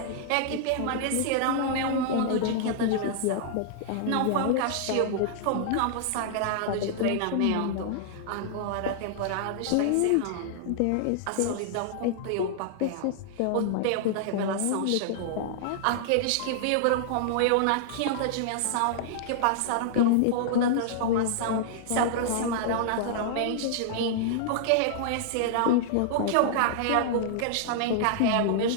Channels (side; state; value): both; different; correlation -0.01